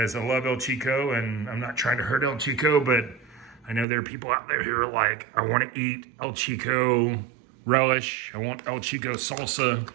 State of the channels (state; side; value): drops out; left; at 3.9 s